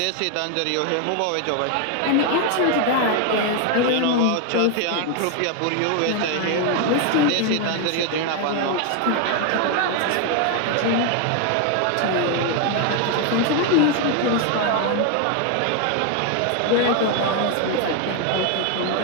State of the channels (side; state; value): both; different; correlation 0.01